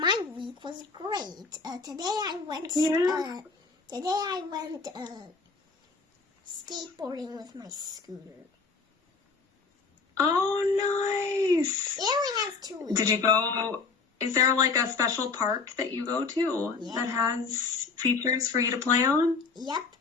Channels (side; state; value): right; quieter; 4.6 dB